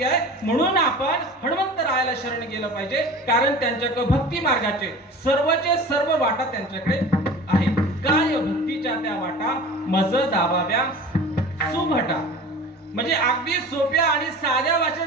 आहे. म्हणून आपण हनुमंतरायाला शरण गेलं पाहिजे, कारण त्यांच्याकडे भक्ती मार्गाचे सर्वचे सर्व वाटा त्यांच्याकडे आहेत. काय भक्तीच्या त्या वाटा मज दाबाव्या सुभटा. म्हणजे अगदी सोप्या आणि साध्या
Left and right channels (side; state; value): both; normal; correlation 0.38